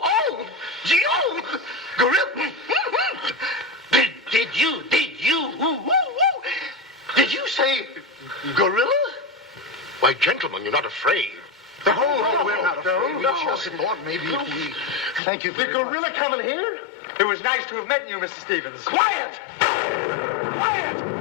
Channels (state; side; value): drops out; right; at 15.2 s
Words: oh, G-O, gorilla. Did you say gorilla? Why, gentlemen, you're not afraid. Oh, we're not afraid. We just thought maybe if we... Thank you for The gorilla coming here? It was nice to have met you, Mr. Stevens. Quiet! Quiet!